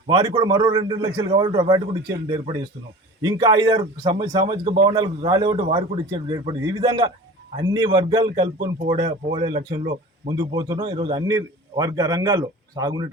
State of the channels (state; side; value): normal; both; correlation 0.38